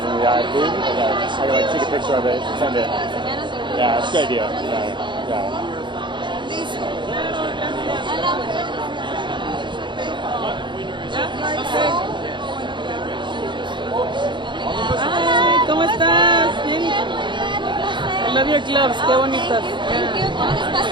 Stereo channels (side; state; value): left; late; 0.23 ms